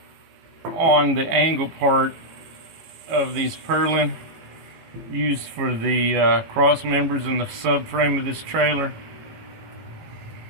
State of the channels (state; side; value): late; left; 18 ms